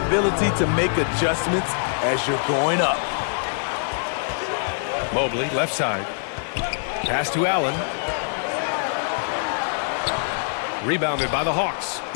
to make adjustments as you're going up. Mobley, left side. Pass to Allen. Rebounded by the Hawks.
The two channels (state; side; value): silent; right; digital silence